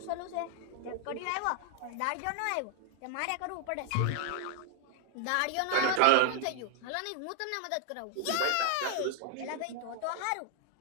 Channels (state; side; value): different; both; correlation 0.00